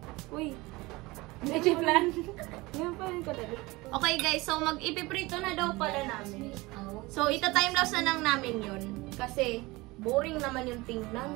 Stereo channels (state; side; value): quieter; left; 22.0 dB